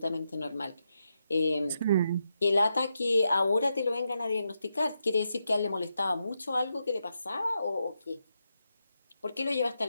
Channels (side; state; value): both; inverted; correlation -0.85